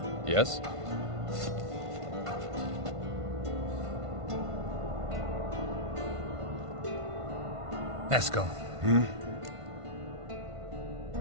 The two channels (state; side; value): late; left; 1.5 ms